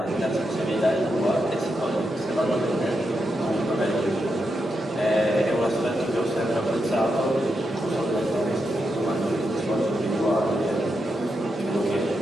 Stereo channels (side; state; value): both; normal; correlation 0.85